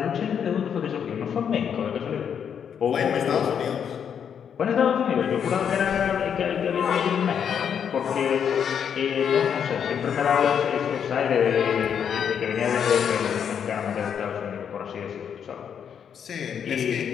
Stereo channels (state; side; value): quieter; right; 7.9 dB